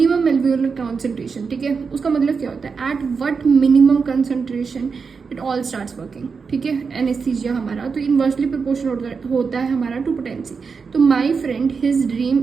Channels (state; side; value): quieter; left; 5.3 dB